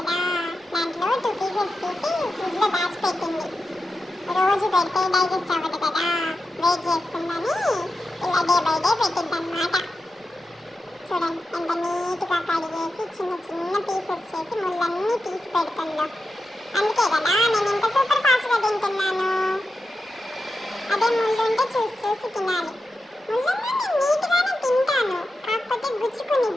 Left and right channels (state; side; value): normal; both; correlation 0.90